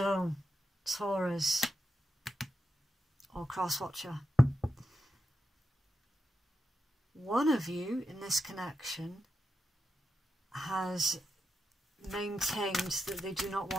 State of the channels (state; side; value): normal; both; correlation 0.87